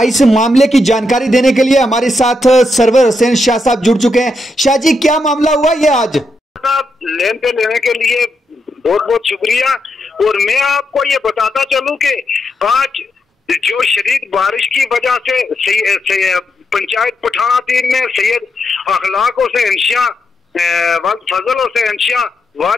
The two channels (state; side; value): normal; both; correlation 0.82